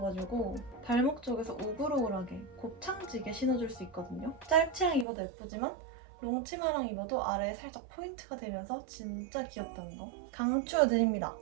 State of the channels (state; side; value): drops out; left; at 5.1 s